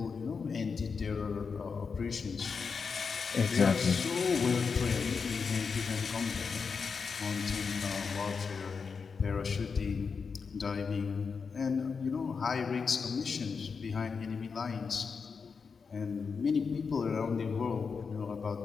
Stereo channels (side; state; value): right; quieter; 5.4 dB